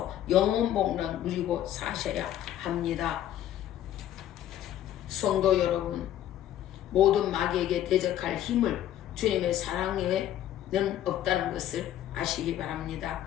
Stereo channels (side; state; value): right; quieter; 11.9 dB